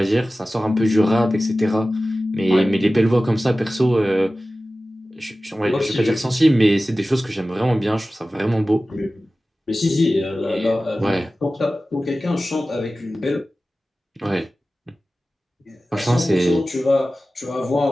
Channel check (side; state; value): both; normal; correlation 0.96